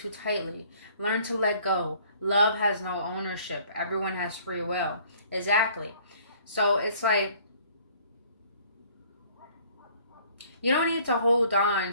tightly. Learn to let go. Love has no ownership. Everyone has free will. Exactly. So it's like, you don't need to hold on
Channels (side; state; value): both; inverted; correlation -0.57